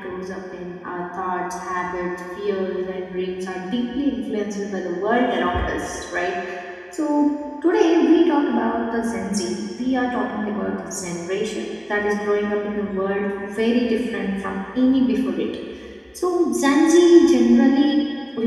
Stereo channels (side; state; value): both; identical; correlation 1.00